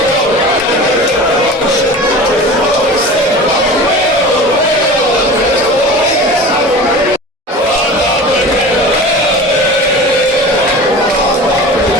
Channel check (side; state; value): both; normal; correlation 0.36